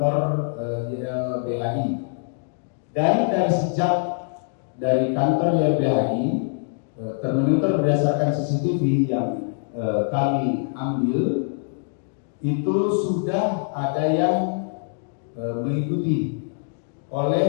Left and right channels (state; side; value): silent; right; digital silence